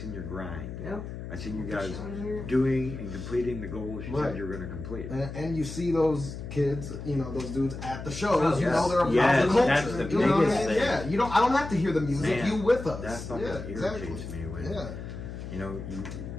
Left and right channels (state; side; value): noise; left; hum, 9 dB below the sound